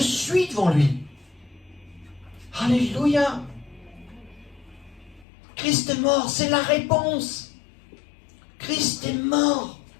suis devant lui. Alléluia. Christ est mort, c'est la réponse. Christ est mort.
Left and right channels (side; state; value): right; drops out; at 5.2 s